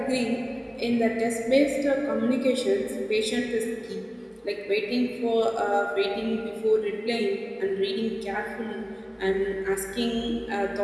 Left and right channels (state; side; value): identical; both; correlation 1.00